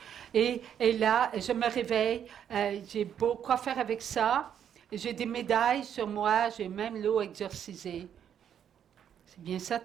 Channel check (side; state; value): left; quieter; 9.0 dB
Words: et là, je me réveille, j'ai beau quoi faire avec ça. J'ai des médailles sur moi, j'ai même l'eau exorcisée. C'est bien ça